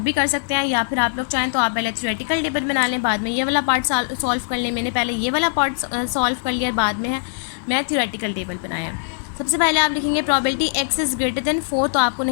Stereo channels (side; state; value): right; silent; digital silence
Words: कर सकते हैं, या फिर आप लोग चाहें तो आप पहले थ्योरेटिकल टेबल बना लें, बाद में ये वाला पार्ट सॉल्व कर लें। मैंने पहले ये वाला पार्ट सॉल्व कर लिया, बाद में मैं थ्योरेटिकल टेबल बनाया। सबसे पहले आप लिखेंगे probability x is greater than 4, तो आपको